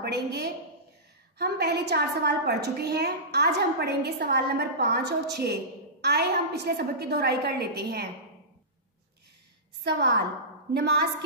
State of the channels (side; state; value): both; normal; correlation -0.19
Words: हम पहले 4 सवाल पढ़ चुके हैं। आज हम पढ़ेंगे सवाल नंबर 5 और 6। आए हम पिछले सबक की दोहराई कर लेते हैं। सवाल, नमाज